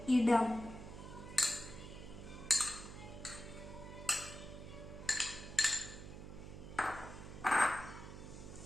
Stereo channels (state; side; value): noise; right; hum, 11 dB below the sound